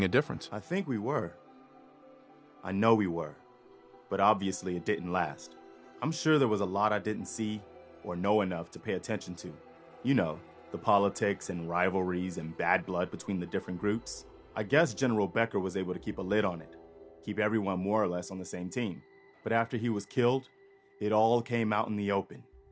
a difference. I think we were. I know we were. But obviously it didn't last. I'm sure there was a lot I didn't see or know enough to pay attention to. You know, the politics and rivalries and bad blood between the different groups. I guess General Becker was able to keep a lid on it, keep everyone more or less on the same team. But after he was killed, it all came out in the open.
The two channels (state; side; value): identical; both; correlation 1.00